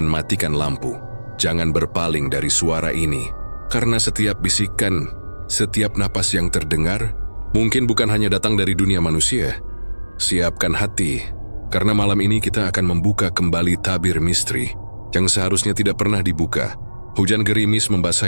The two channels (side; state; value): both; inverted; correlation -1.00